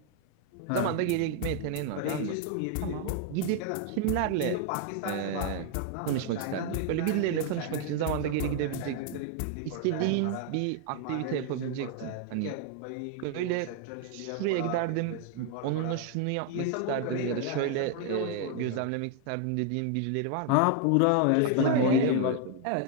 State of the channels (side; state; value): both; different; correlation 0.00